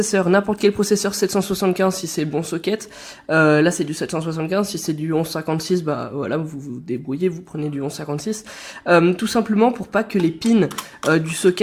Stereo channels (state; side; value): identical; both; correlation 1.00